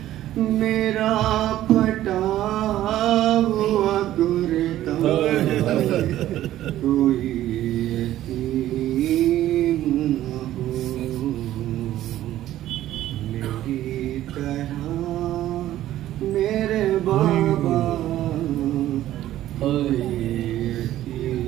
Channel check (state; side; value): quieter; left; 13.5 dB